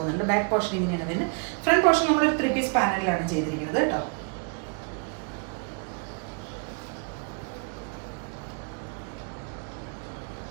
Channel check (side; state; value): left; quieter; 37.1 dB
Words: ബാക്ക് പോർഷൻ ഇങ്ങനെയാണ് വരുന്നത്. ഫ്രണ്ട് പോർഷൻ നമ്മൾ ഒരു 3 പീസ് പാനലിലാണ് ചെയ്തിരിക്കുന്നത് കേട്ടോ.